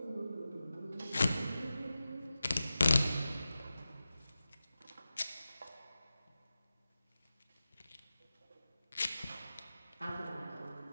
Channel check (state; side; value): inverted; both; correlation -0.94